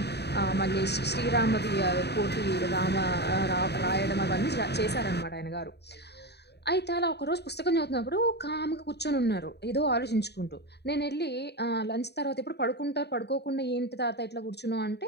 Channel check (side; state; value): right; late; 0.49 ms